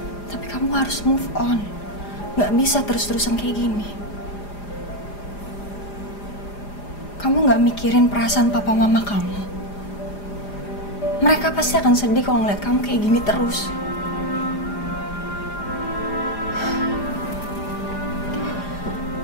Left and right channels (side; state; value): right; late; 4.9 ms